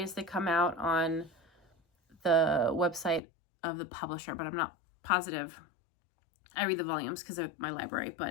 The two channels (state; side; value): drops out; right; at 3.2 s